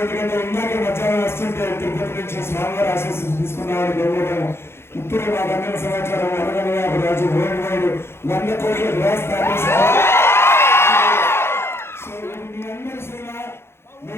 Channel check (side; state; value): right; late; 0.12 ms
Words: ఎందుకంటే ఇందాక మధ్యాహ్నం వస్తుంటే తిరుపతి నుంచి స్వామివారి ఆశీస్సులు తీసుకున్నామని గౌరవం. ఇప్పుడు మాకు అందిన సమాచారం 150 రాజు వరల్డ్ వైడ్ 100 కోట్ల గ్లాస్ దాటేశారు. సో ఇది మీ అందరి సినిమా.